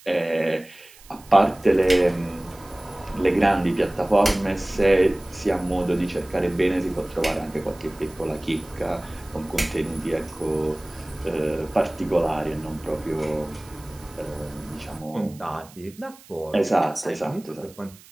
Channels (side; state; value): right; noise; hiss, 23 dB below the sound